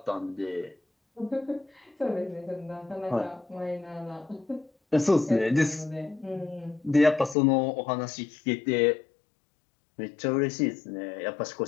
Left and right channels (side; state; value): right; drops out; at 7.4 s